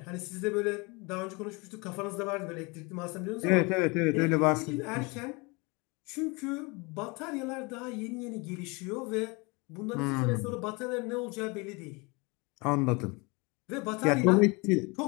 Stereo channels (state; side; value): quieter; right; 27.9 dB